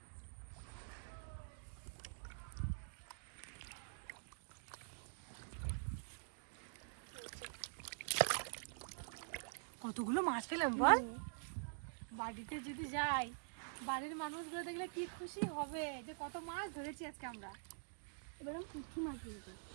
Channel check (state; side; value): silent; left; digital silence